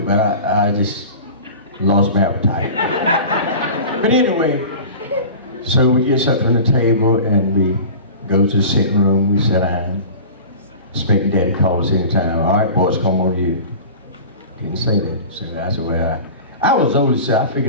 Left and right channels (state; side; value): inverted; both; correlation -0.37